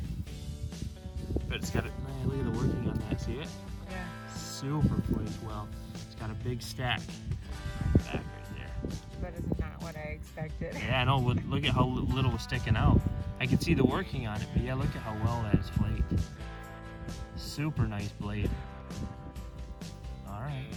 But it's got a, look at the working on that, see it? Yeah. Super flaked well. It's got a big stack back right there. but it's not what I expected. Yeah, I know. Look at how little was sticking out. I can see the working on it, but yeah, look at how well that is flaked. Super nice blade. All right,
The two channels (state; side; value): identical; both; correlation 1.00